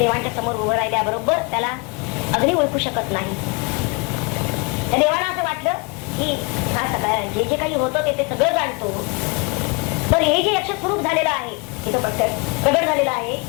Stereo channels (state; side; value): quieter; right; 30.2 dB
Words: समोर उभं राहिल्याबरोबर त्याला अग्नी ओळखू शकत नाही. त्या देवाला असं वाटलं की हा सगळं जे जे काही होतं ते सगळं जाणतो, तर हे जे यक्ष स्वरूप झालेलं आहे, तिथं प्रगट झालेलं आहे,